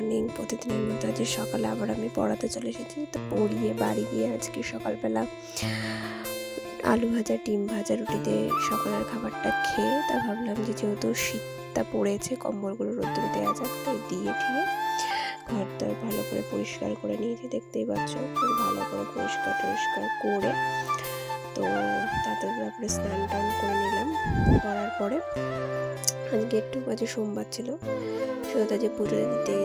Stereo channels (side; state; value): both; identical; correlation 1.00